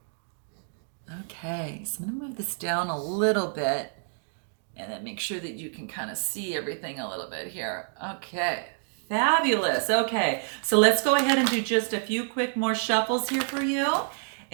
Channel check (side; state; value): left; silent; 59 dB below the other